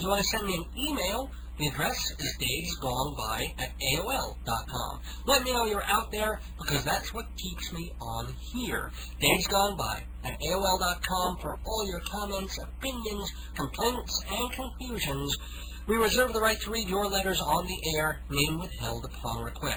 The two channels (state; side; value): identical; both; correlation 1.00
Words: want to send me an email, the address is davesgoneby@aol.com. Let me know you're out there, because that's what keeps me on here. davesgoneby@aol.com for all your comments, opinions, complaints, and confusions. We reserve the right to read your letters on the air, name withheld upon